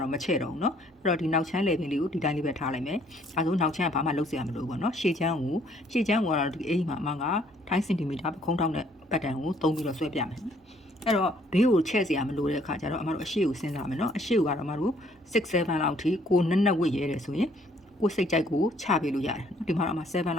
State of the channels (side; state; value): both; normal; correlation 0.63